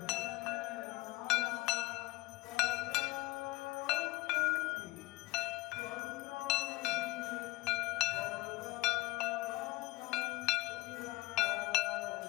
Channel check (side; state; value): right; quieter; 20.9 dB